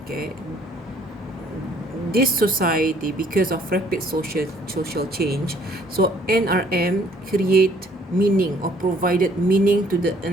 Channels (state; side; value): normal; both; correlation 0.61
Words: okay, this society, because of rapid social change, so NRM create meaning or provided meaning to the